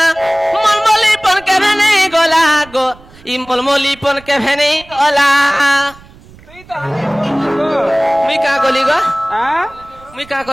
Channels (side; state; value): right; noise; rumble, 24 dB below the sound